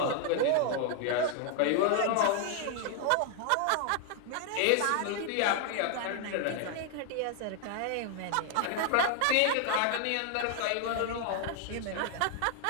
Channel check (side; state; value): both; different; correlation 0.00